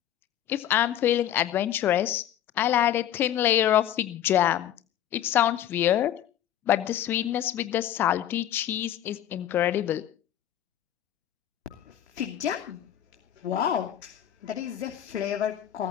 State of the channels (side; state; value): right; quieter; 11.3 dB